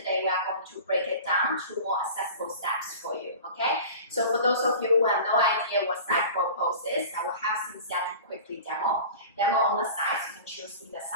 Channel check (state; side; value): inverted; both; correlation -0.37